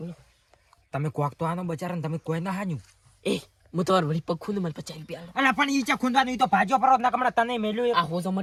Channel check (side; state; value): both; identical; correlation 1.00